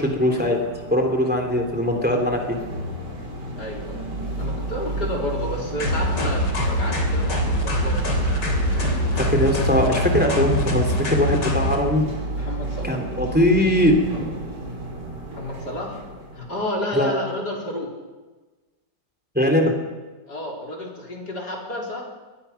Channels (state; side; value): normal; both; correlation 0.08